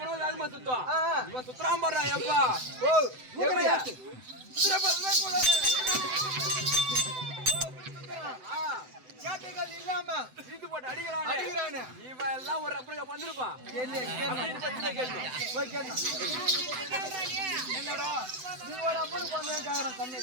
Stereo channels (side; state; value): left; late; 7.9 ms